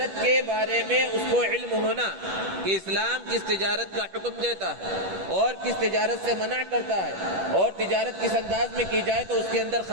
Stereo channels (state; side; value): late; left; 10 ms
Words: کے بارے میں اس کو علم ہونا کہ اسلام کس تجارت کا حکم دیتا ہے اور کس تجارت سے منع کرتا ہے، اور تجارت کس انداز میں کی جائے تو اس کے اندر